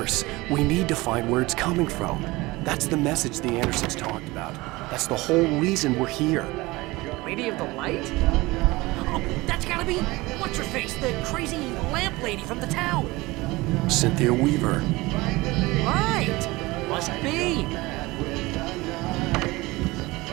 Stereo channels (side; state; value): left; quieter; 21.3 dB